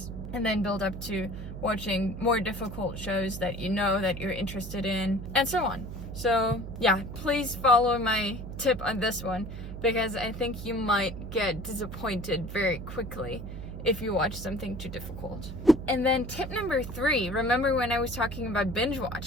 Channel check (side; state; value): right; noise; hum, 9 dB below the sound